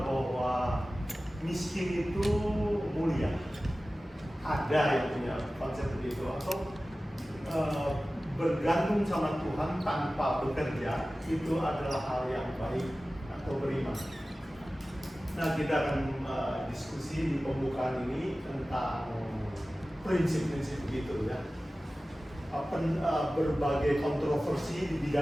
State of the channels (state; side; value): normal; both; correlation 0.96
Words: bahwa miskin itu mulia. Ada yang punya konsep begitu atau bergantung sama Tuhan tanpa bekerja itu adalah hal yang baik atau beriman. Nah, kita akan diskusi di pembukaan ini tentang prinsip-prinsip begitu ya. Berbagai kontroversi di